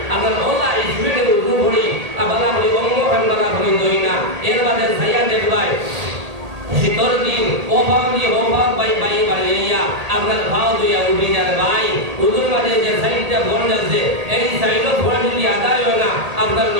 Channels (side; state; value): left; late; 1.8 ms